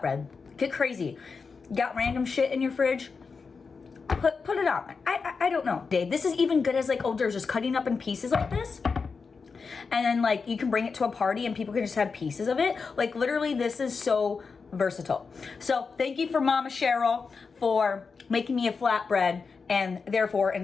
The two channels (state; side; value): quieter; right; 5.0 dB